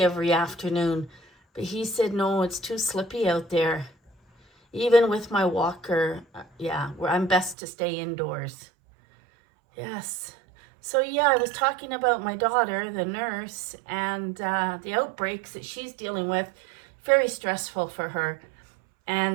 every afternoon. But he said, no, it's too slippy out there. Even with my walker, I'm best to stay indoors. Yes. So yeah, I was talking about my daughter, the nurse, and the outbreaks that she's dealing with. Very stressful for her.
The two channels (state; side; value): drops out; left; at 7.6 s